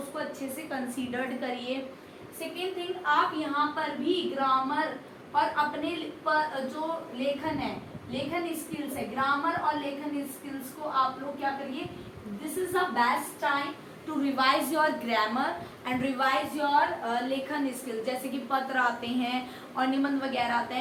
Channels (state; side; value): identical; both; correlation 1.00